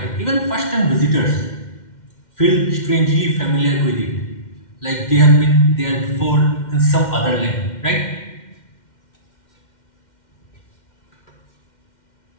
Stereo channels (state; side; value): late; right; 2.1 ms